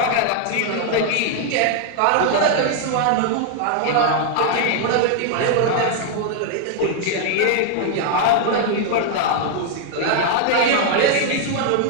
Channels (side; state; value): both; different; correlation 0.00